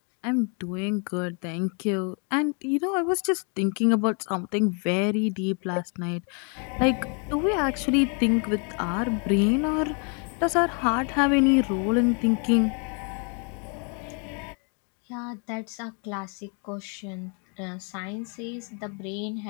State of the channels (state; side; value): quieter; right; 37.9 dB